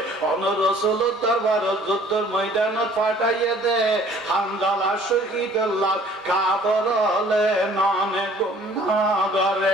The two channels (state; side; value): normal; both; correlation 0.55